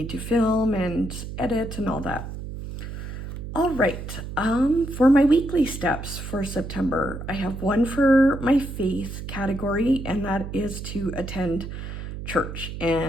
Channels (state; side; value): noise; right; hum, 8 dB below the sound